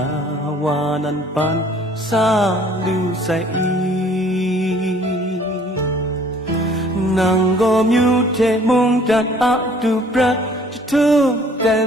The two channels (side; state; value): both; normal; correlation 0.56